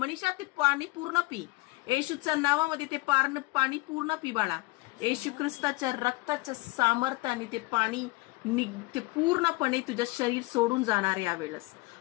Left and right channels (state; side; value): quieter; right; 22.9 dB